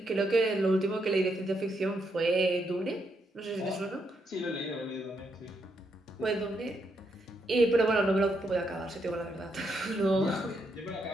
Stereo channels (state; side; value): normal; both; correlation 0.78